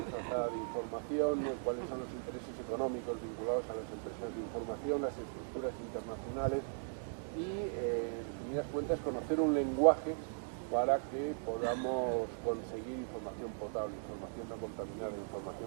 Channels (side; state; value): left; silent; digital silence